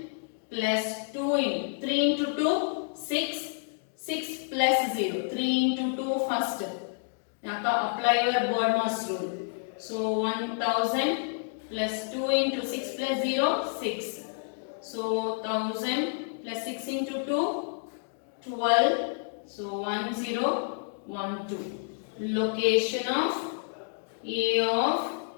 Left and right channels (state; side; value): silent; right; digital silence